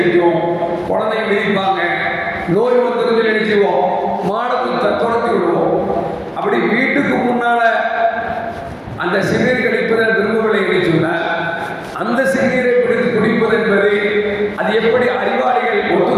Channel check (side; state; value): both; identical; correlation 1.00